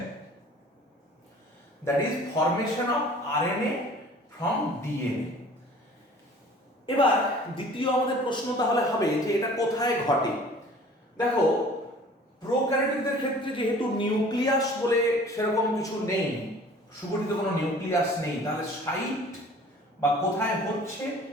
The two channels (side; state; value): both; normal; correlation 0.48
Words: that is formation of RNA from DNA. এবার দ্বিতীয় আমাদের প্রশ্ন তাহলে হবে যে এটা কোথায় ঘটে। দেখো, প্রোক্যারিওটদের ক্ষেত্রে যেহেতু নিউক্লিয়াস বলে সেরকম কিছু নেই, সুগঠিত কোনো নিউক্লিয়াস নেই, তাহলে সাইট বা কোথায় হচ্ছে